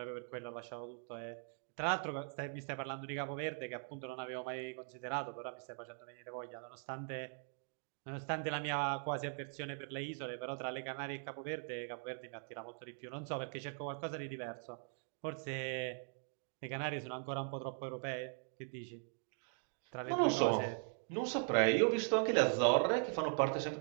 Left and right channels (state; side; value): silent; left; 51 dB below the other